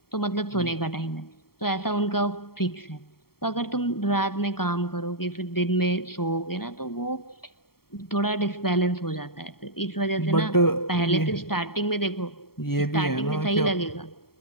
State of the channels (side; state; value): right; late; 0.94 ms